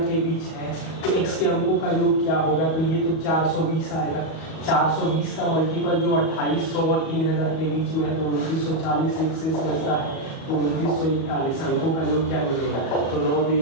के बीच है। तो एक्स के अंकों का योग क्या होगा, तो ये तो 420 आएगा। 420 का मल्टीपल जो 2800 और 3000 के बीच में है तो 2940 एक शेष बचता है। तो 2941 अंकों का योग क्या मिलेगा, तो 9, 2,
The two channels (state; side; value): late; right; 37 ms